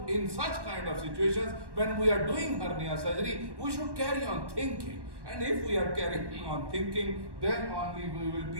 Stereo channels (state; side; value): late; left; 1.1 ms